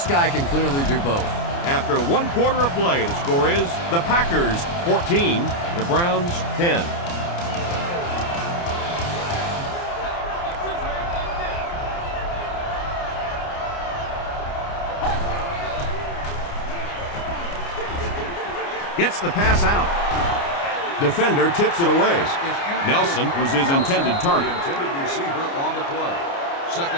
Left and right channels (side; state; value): right; late; 29 ms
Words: guy can clearly do both. After 1 quarter of play, the score is the Packers 14, the Browns 10. Gets the pass out. Defender tips it away. Nelson was his intended target. The intended receiver on the play.